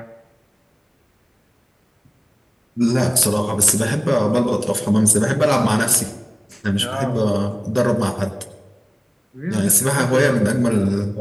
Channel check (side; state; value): both; identical; correlation 1.00